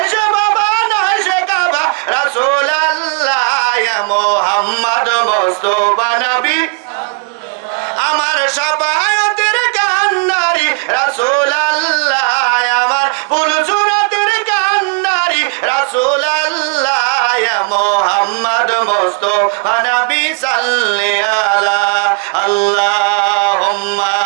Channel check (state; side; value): quieter; left; 33.7 dB